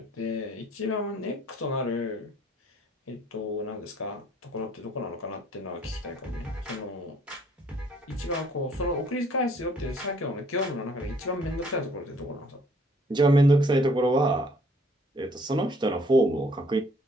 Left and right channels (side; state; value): both; normal; correlation 0.60